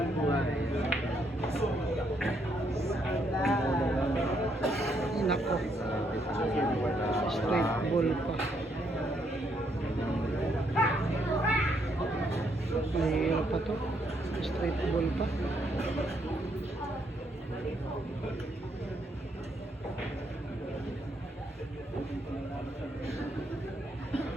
Nako. Straight ball pa. Mahirap pa to. Straight ball pa.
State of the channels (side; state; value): both; normal; correlation 0.74